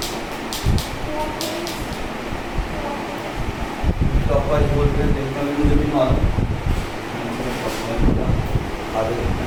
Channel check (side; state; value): both; identical; correlation 1.00